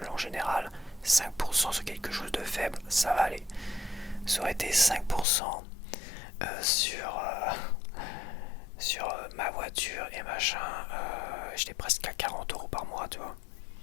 en général, 5% sur quelque chose de faible, ça va aller. Ça aurait été 5% sur ma voiture et machin, j'étais presque à 40 € par mois, tu vois.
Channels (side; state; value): right; drops out; at 5.2 s